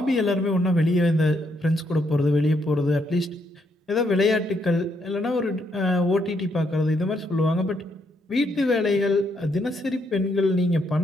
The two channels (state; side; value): normal; both; correlation 0.75